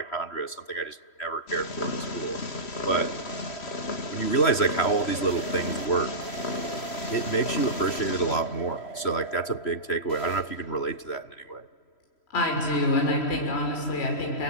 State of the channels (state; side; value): late; right; 3.1 ms